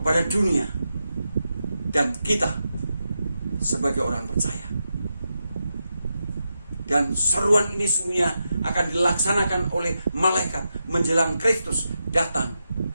dunia dan kita sebagai orang percaya. Dan seruan ini semuanya akan dilaksanakan oleh malaikat menjelang Kristus datang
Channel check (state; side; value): inverted; both; correlation -0.88